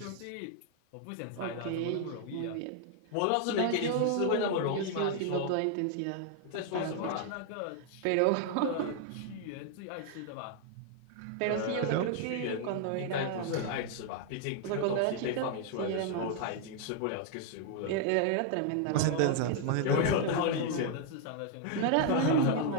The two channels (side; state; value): both; different; correlation 0.00